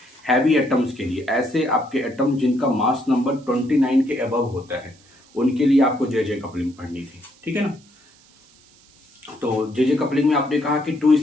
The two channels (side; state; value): right; noise; hiss, 29 dB below the sound